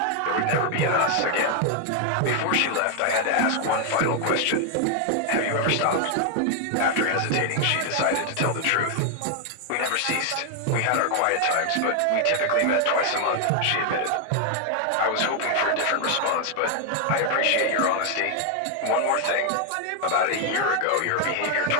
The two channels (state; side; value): different; both; correlation 0.00